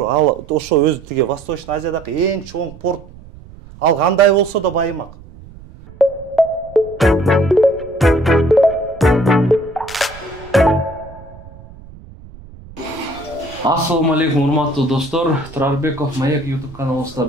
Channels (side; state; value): right; noise; rumble, 19 dB below the sound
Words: ал ошо өзү тиги Восточный Азиядагы эң чоң порт. Ал кандай болсо да байымак. Ассаламу алейкум, урматтуу достор. Турарбеков Маек YouTube